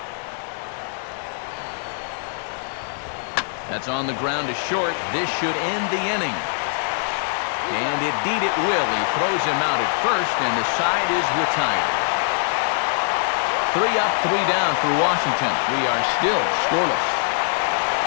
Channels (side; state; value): right; silent; 56 dB below the other